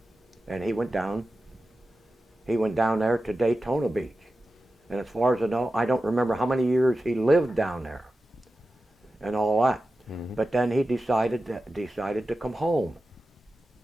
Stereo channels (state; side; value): normal; both; correlation 0.93